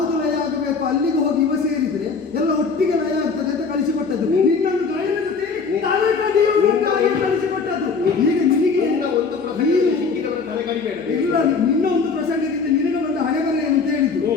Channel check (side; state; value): right; quieter; 5.0 dB